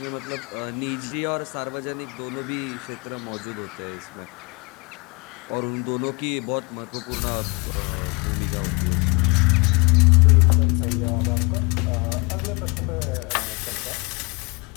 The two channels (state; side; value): quieter; right; 29.2 dB